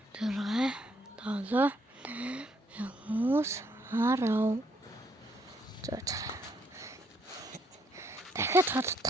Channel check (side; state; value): both; normal; correlation 0.70